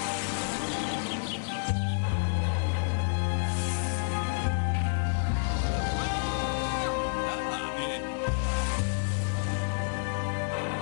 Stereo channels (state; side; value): silent; right; digital silence